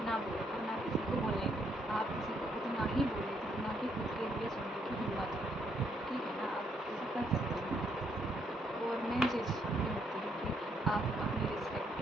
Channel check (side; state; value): both; normal; correlation 0.72